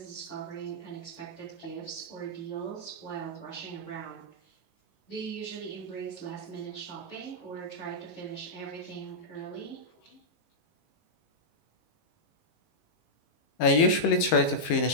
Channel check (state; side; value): late; right; 19 ms